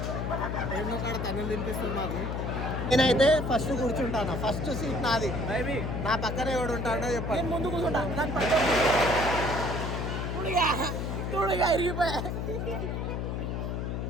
ఏమో కాడ తన్నులు తినిపిస్తాడు మాకు. నేనైతే ఫస్ట్ కూర్చుంటాను, ఫస్ట్ సీట్ నాది. నా పక్కన ఎవడు ఉంటాడో చెప్పాను. ముందు కూర్చుంటా, ఇరిగిపోయా.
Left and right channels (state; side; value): noise; left; hum, 2 dB below the sound